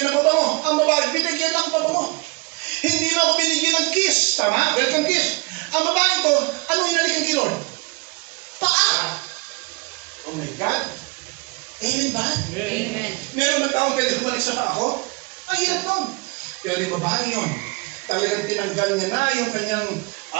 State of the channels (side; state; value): left; quieter; 27.5 dB